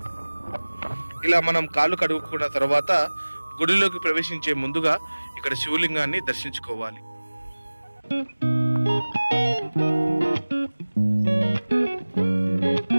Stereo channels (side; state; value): both; inverted; correlation -1.00